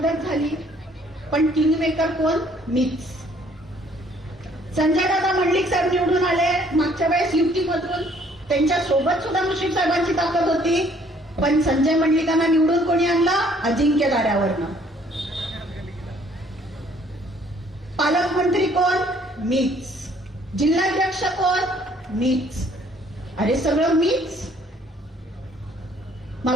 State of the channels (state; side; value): normal; both; correlation 0.61